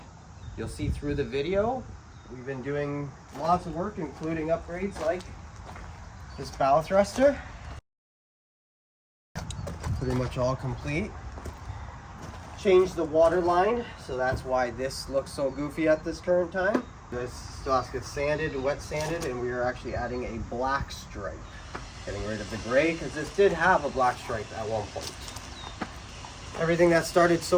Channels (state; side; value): identical; both; correlation 1.00